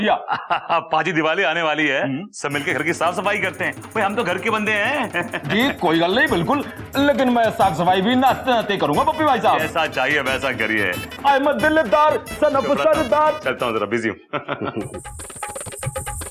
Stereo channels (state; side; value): identical; both; correlation 1.00